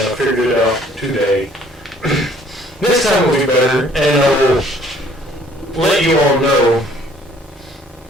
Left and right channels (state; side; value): normal; both; correlation 0.59